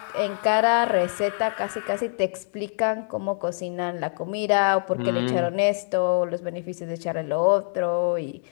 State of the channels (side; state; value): right; silent; 62 dB below the other